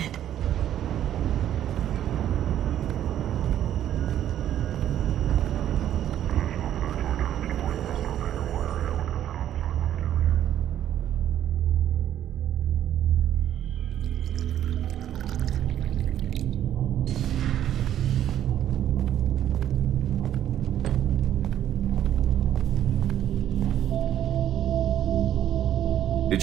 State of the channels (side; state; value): left; quieter; 11.1 dB